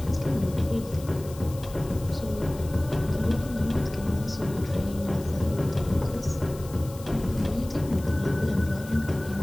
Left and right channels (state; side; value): noise; left; hiss, 18 dB below the sound